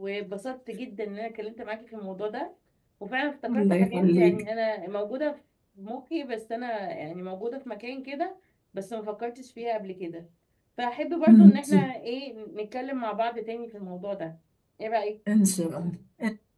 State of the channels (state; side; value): identical; both; correlation 1.00